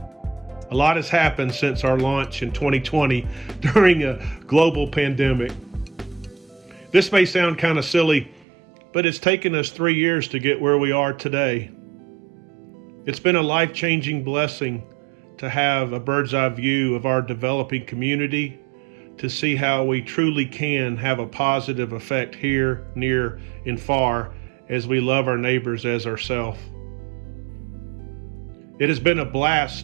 A lot has happened since our launch in 2020 during a global pandemic. This may sound kind of silly, but it's taken us 3 years to get where we are today. It's been a life-changing blessing to have a bird's eye view of our developing community, to see how we truly can have a positive effect here, near, and far as we love our neighbors as ourselves. It has been a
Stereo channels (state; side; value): drops out; left; at 8.5 s